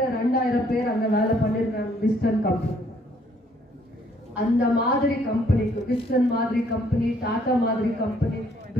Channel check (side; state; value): both; normal; correlation 0.65